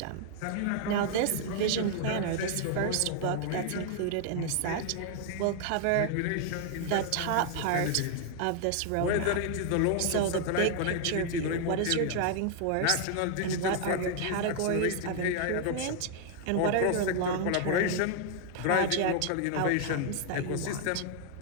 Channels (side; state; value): both; different; correlation 0.00